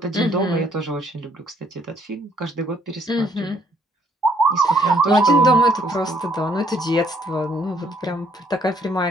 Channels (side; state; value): both; normal; correlation 0.66